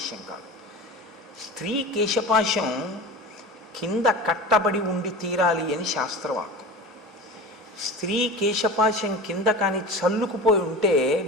కాదు. స్త్రీ కేశపాశం కింద కట్టబడి ఉండి తీరాలి అని శాస్త్రవాక్కు. స్త్రీ కేశపాశం కింద కానీ చల్లుకుపోయి ఉంటే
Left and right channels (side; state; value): both; normal; correlation 0.33